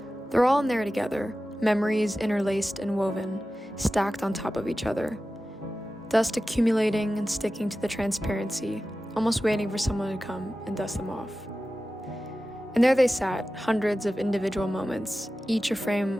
They're all in there together, memories interlaced and woven, stacked on top of each other. Dust accumulating and sticking to the transparency, almost waiting for someone to come and dust them off. And there they sat, hundreds of individual moments, each a frame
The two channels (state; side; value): normal; both; correlation 0.94